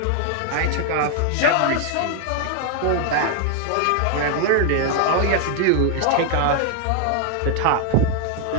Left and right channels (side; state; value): both; different; correlation 0.00